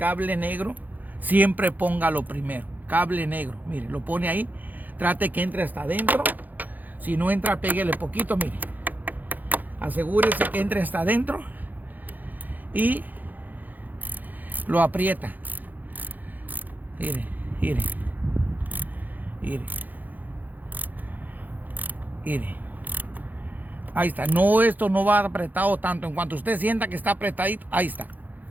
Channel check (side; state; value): left; late; 0.084 ms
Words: negro, siempre póngalo primero. Cable negro, mire, lo pone ahí. Trate que entre hasta adentro. Si no entra, péguele poquito, mire. Asegúrese que entre hasta adentro. Y lo aprieta. Mire, mire. Mire. Mire. Ahí está. No, esto no va apretado tanto. En cuanto usted sienta que está apretadito, ahí está.